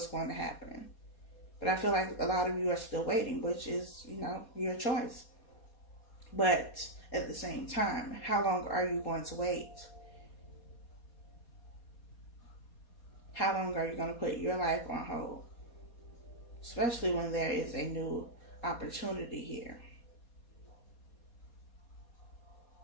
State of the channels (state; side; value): late; right; 4.2 ms